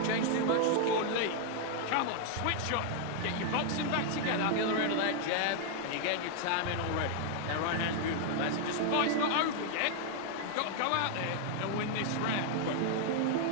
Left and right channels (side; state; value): both; different; correlation 0.00